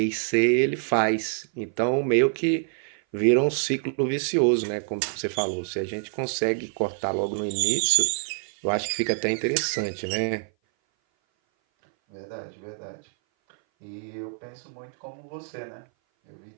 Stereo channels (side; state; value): left; silent; 58 dB below the other